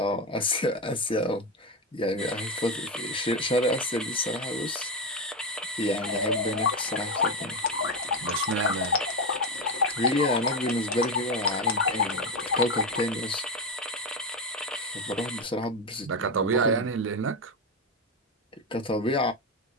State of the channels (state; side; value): normal; both; correlation 0.12